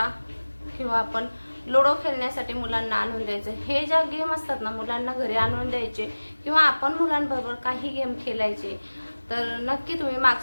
किंवा आपण लुडो खेळण्यासाठी मुलांना आणून द्यायचं. हे ज्या गेम असतात ना मुलांना घरी आणून द्यायचे किंवा आपण मुलांबरोबर काही गेम खेळायचे. तर नक्की तुम्ही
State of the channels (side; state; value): both; inverted; correlation -1.00